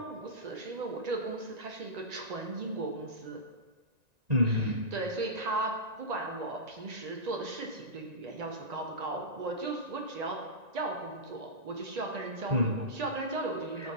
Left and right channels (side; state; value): left; late; 1.9 ms